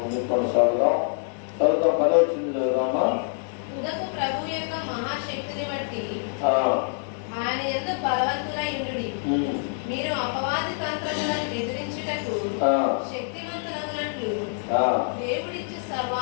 ముందుకు కొనసాగుదాం. 10వ వచనం చదువుదామా. ప్రభు యొక్క మహాశక్తిని బట్టి ఆయన యందు బలవంతులై ఉండుడి. మీరు అపవాది తంత్రములను ఎదిరించుటకు శక్తివంతులగునట్లు దేవుడిచ్చి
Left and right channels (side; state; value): right; silent; digital silence